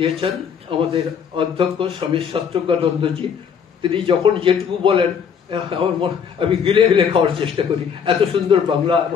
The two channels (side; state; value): right; quieter; 7.1 dB